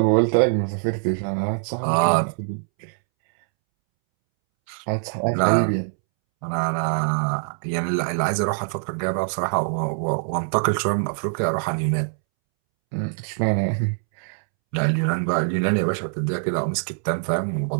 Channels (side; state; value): left; silent; 63 dB below the other